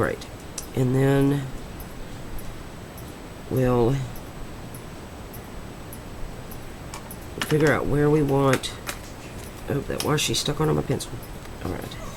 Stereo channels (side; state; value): both; identical; correlation 1.00